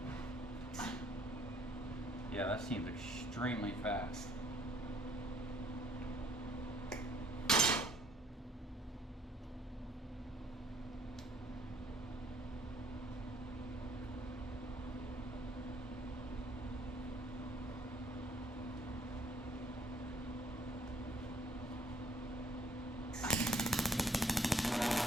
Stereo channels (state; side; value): normal; both; correlation 0.62